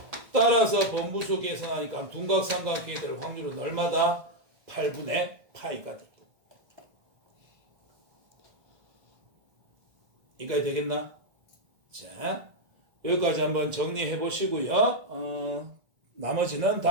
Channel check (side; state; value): left; late; 1.6 ms